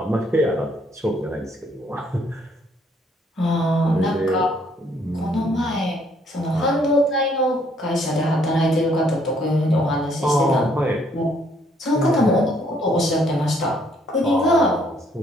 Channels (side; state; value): both; normal; correlation 0.66